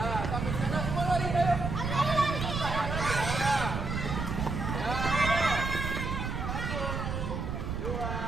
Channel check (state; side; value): noise; right; rumble, 3 dB below the sound